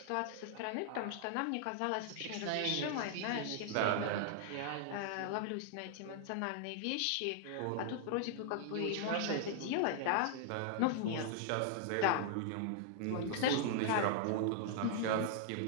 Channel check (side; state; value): both; different; correlation -0.01